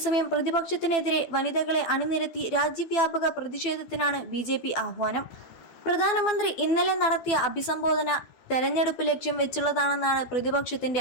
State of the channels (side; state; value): right; late; 12 ms